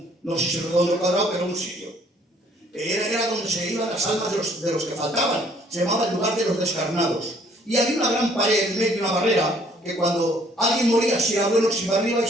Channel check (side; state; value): both; normal; correlation 0.61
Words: no sé si es redondo o cuadrado, pero un sitio. Era donde se iban las almas de los que faltaban. Se llamaba el lugar de los descarnados. Y había una gran pared en medio, una barrera, que cuando alguien moría, si era bueno, se iba arriba, y